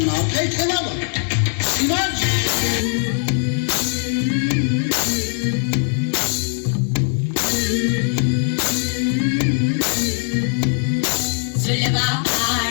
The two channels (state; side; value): silent; right; 66 dB below the other